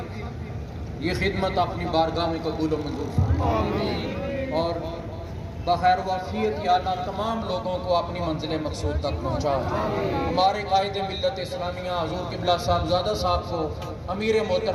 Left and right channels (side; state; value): both; identical; correlation 1.00